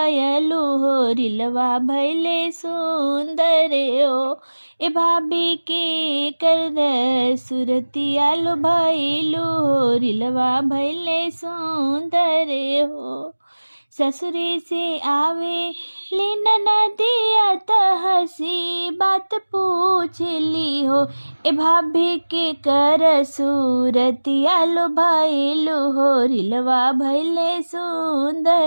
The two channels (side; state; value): both; inverted; correlation -1.00